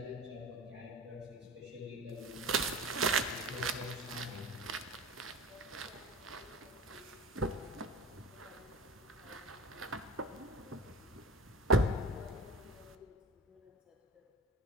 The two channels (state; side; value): normal; both; correlation 0.37